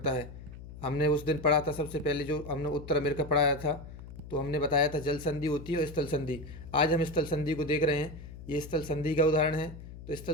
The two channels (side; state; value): left; noise; hum, 14 dB below the sound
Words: है। हमने उस दिन पढ़ा था, सबसे पहले जो हमने उत्तर अमेरिका पढ़ाया था, तो हमने बताया था जल संधि होती है और स्थल संधि। आज हम स्थल संधि को देख रहे हैं, ये स्थल संधि का उदाहरण है। तो स्थल